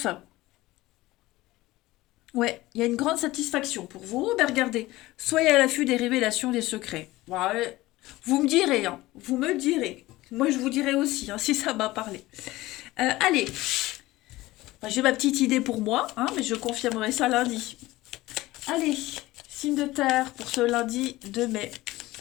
ouais, il y a une grande satisfaction pour vous. Ben regardez, soyez à l'affût des révélations, des secrets. Ouais, vous me direz, hein, vous me direz. Moi, je vous dirai aussi, hein, si ça m'a parlé. Allez, enfin, j'ai ma petite idée pour moi, hein, mais je confirmerai ça lundi. Allez, signe de terre pour ce lundi 2 mai.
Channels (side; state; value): right; quieter; 18.3 dB